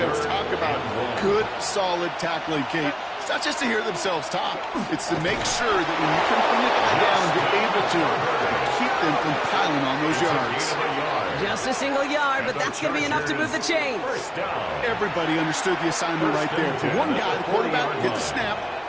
talk about good, solid tackling, Kate. It's not just to hear themselves talk. It's to make sure that when you can bring it down, you're able to keep them from piling on those yards. Just a single yard, but that's going to be enough to move the chains. Everybody understood the assignment right there. For one guy, the quarterback, get the snap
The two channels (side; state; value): both; identical; correlation 1.00